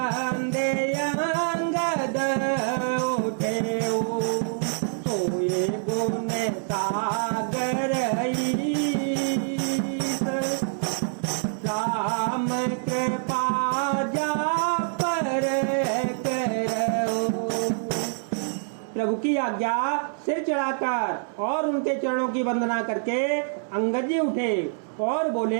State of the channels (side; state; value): left; silent; 61 dB below the other